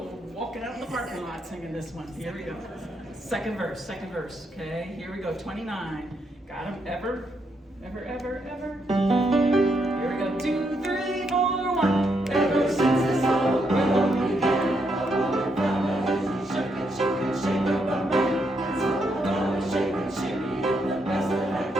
walking out in the parking lot singing this one. Here we go. Second verse. Okay, here we go. 29. Got 'em? Ever. Here we go. 2, 3, 4, 1. Ever since this whole world began, I wanna find a shake up a man. So I'm gonna shake and shimmy in the best that I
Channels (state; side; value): normal; both; correlation 0.78